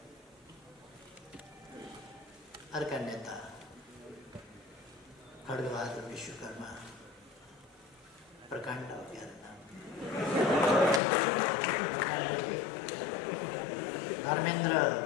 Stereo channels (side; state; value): right; drops out; at 11.0 s